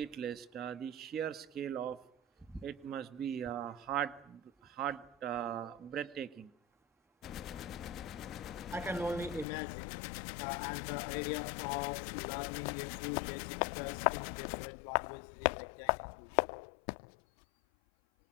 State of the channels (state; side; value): drops out; right; at 9.5 s